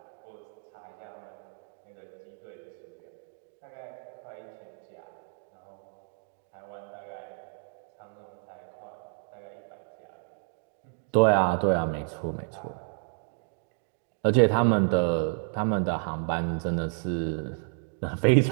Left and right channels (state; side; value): silent; left; digital silence